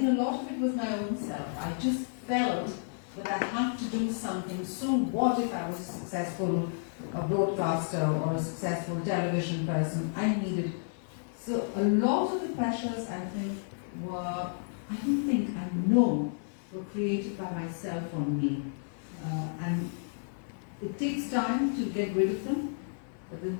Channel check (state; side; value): silent; right; digital silence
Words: a lot of it was my own self. I just felt that I had to do something. So what if I was a successful broadcaster or a successful television person? I needed. So a lot of the pressures, I think, I know were created by myself or me. And it takes time to get rid of them. But then